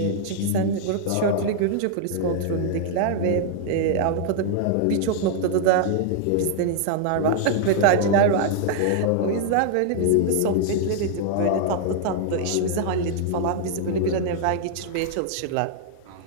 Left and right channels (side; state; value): both; different; correlation 0.00